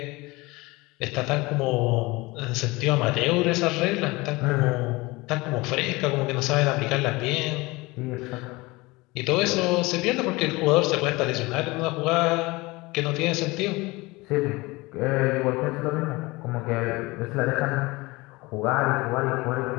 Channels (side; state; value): right; quieter; 22.7 dB